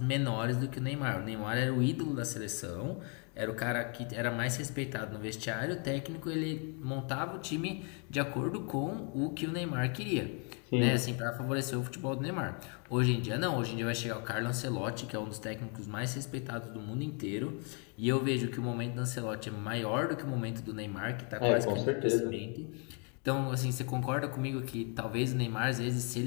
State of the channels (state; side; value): quieter; right; 37.8 dB